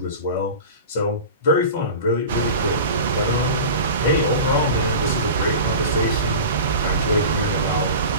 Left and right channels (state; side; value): inverted; both; correlation -0.33